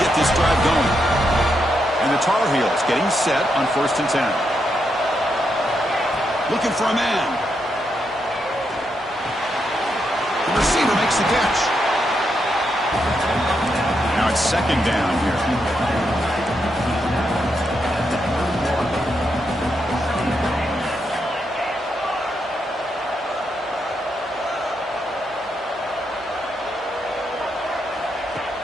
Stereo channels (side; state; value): both; normal; correlation 0.82